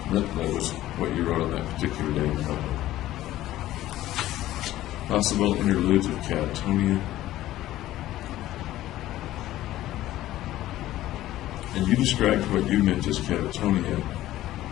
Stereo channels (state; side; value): quieter; right; 14.7 dB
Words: That was what you wrote on that particular day in the notebook. Possible interludes of catatonia. And you described what you meant as catatonia,